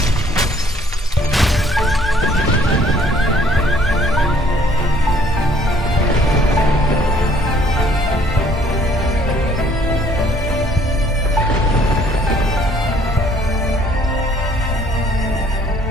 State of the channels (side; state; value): both; normal; correlation 0.60